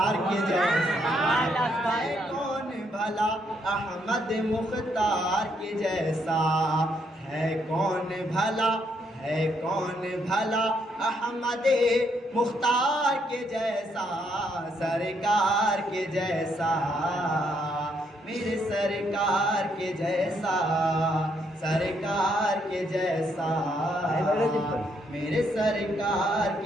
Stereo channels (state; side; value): normal; both; correlation 0.74